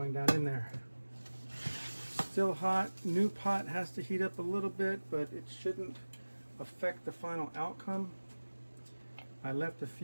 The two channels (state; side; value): inverted; both; correlation -1.00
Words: down in there. Still hot. New pot has to heat up a little bit, but it shouldn't affect the final outcome. I left a